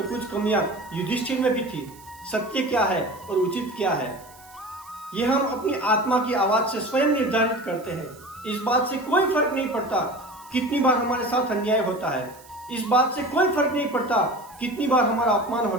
कुछ कमियां युधिष्ठिर में भी थी। सत्य क्या है और उचित क्या है, यह हम अपनी आत्मा की आवाज से स्वयं निर्धारित करते हैं। इस बात से कोई फर्क नहीं पड़ता कितनी बार हमारे साथ अन्याय होता है। इस बात से कोई फर्क नहीं पड़ता कितनी बार हमारा अपमान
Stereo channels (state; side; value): noise; right; hiss, 23 dB below the sound